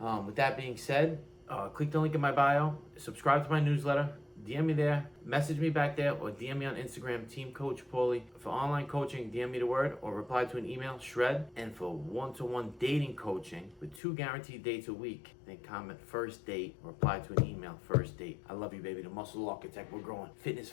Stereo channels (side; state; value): right; drops out; at 14.0 s